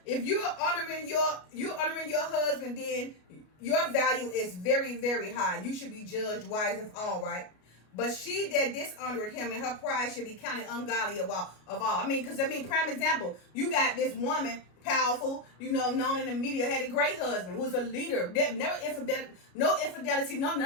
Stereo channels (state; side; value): late; right; 33 ms